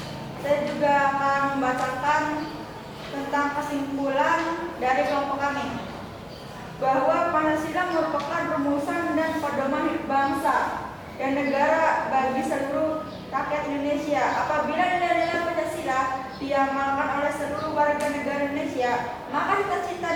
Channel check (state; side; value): identical; both; correlation 1.00